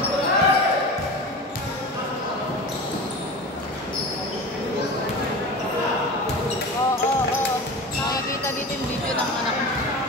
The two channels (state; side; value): normal; both; correlation 0.31